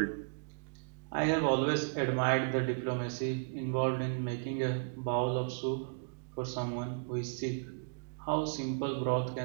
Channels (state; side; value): silent; left; digital silence